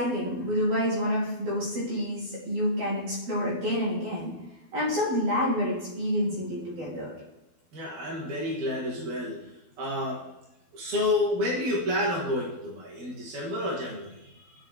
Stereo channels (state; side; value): late; left; 12 ms